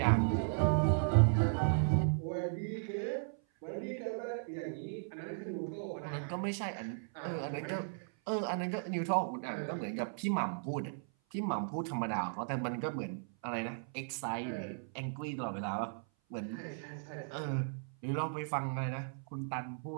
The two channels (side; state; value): left; silent; 54 dB below the other